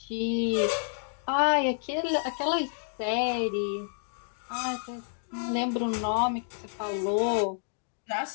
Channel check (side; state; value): right; silent; 58 dB below the other